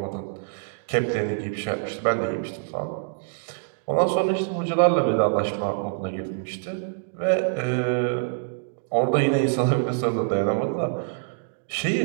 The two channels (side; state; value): left; silent; digital silence